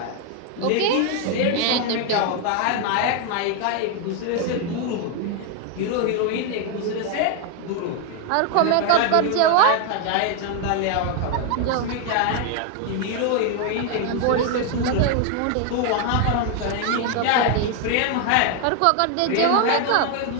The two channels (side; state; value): both; different; correlation 0.01